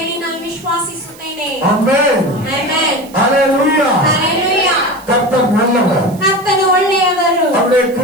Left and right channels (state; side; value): noise; right; hiss, 22 dB below the sound